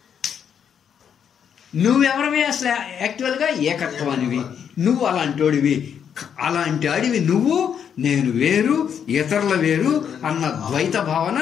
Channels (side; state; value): right; quieter; 8.1 dB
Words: నువ్వెవరివి అసలు యాక్చువల్గా? ఏకత్వానివి. నువ్వు అలాంటి వాడివి నువ్వు. నేను వేరు, ఇతరుల వేరు అన్న ద్వైత భావన